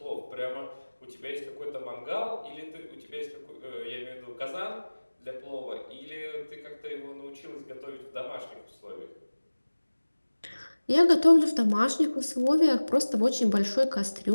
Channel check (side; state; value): both; inverted; correlation -1.00